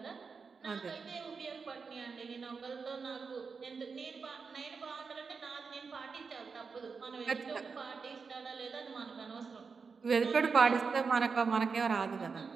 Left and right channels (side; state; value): left; quieter; 5.1 dB